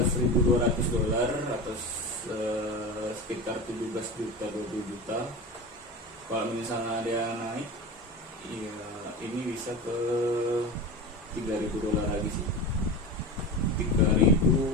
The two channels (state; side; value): normal; both; correlation 0.27